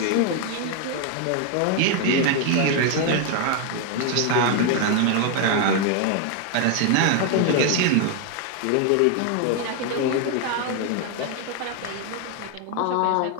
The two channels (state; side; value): different; both; correlation 0.01